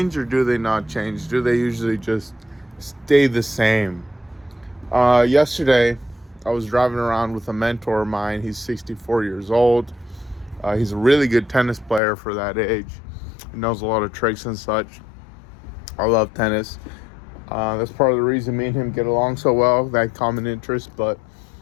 or do they not change? Do they usually just stay the same? Yesterday, I was driving around with a mentor of mine. He's 64 years old. He's a really good tennis player for that age. He knows a lot of tricks and such. I love tennis. That's part of the reason me and him get along so well, that common interest. But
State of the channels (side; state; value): right; drops out; at 12.0 s